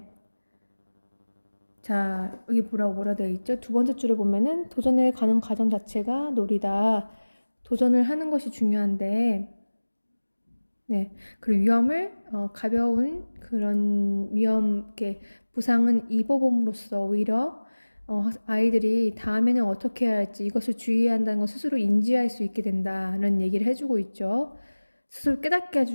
자, 여기 뭐라 되어 있죠? 두 번째 줄에 보면은 도전에 가는 과정 자체가 놀이다. 도전을 하는 것이 중요한데, 네. 그리고 위험을, 가벼운 그런 부상은 입어봄으로써 오히려, 아이들이 다음에는 어떻게 해야 할지 이것을 주의해야 한다는 걸 스스로 인지할 수 있게 된다는 얘기를 해주고 있죠. 스스로 깨닫게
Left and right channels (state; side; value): inverted; both; correlation -1.00